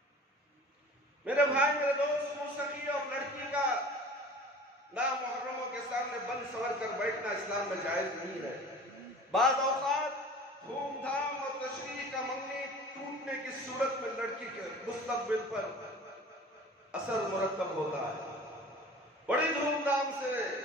میرے بھائی میرے دوست، موسیقی اور لڑکی کا نامحرموں کے سامنے بند سور کر بیٹھنا اسلام میں جائز نہیں ہے۔ بعض اوقات دھوم دھام اور تشریح کا منگنی ٹوٹنے کی صورت میں لڑکی کے مستقبل پر اثر مرتب ہوتا ہے۔ بڑی دھوم دھام سے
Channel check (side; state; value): both; normal; correlation 0.42